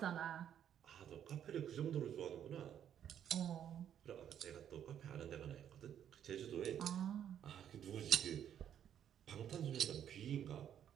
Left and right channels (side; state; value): left; quieter; 9.7 dB